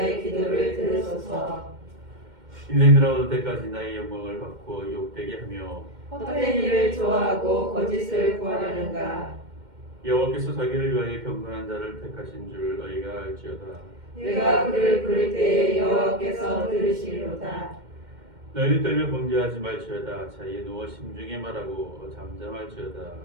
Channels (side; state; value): left; late; 2.1 ms